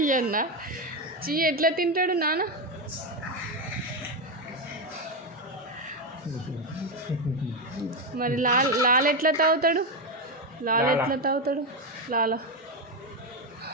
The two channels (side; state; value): both; normal; correlation 0.09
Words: చీ ఎట్లా తింటాడు నాన్న? మరి లాల ఎట్లా తాగుతాడు? లాల ఎట్లా తాగుతాడు? లాల